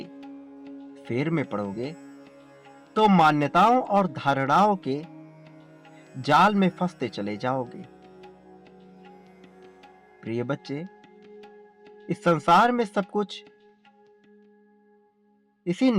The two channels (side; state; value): both; identical; correlation 1.00